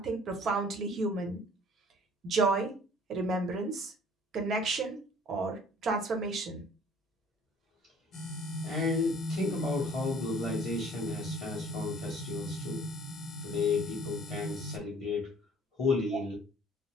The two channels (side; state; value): both; normal; correlation 0.53